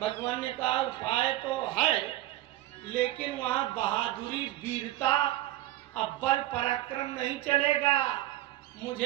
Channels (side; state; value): left; quieter; 15.7 dB